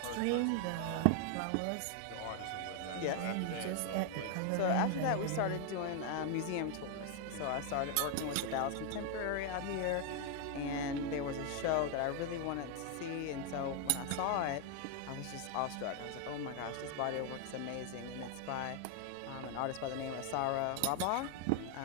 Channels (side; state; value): both; different; correlation 0.00